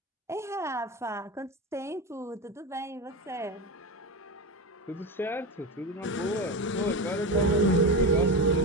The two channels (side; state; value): both; normal; correlation 0.19